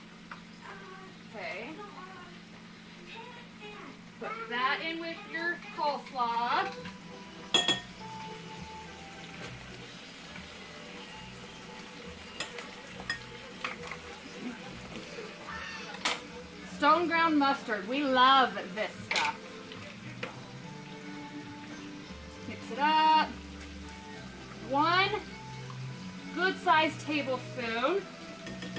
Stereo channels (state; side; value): noise; right; rumble, 28 dB below the sound